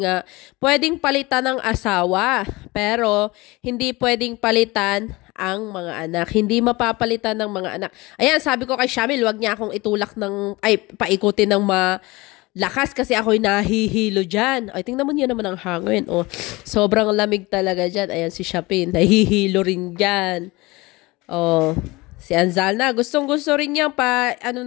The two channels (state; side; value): quieter; right; 22.4 dB